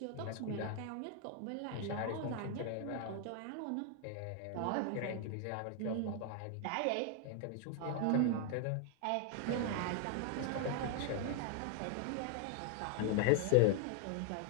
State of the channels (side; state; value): both; different; correlation 0.00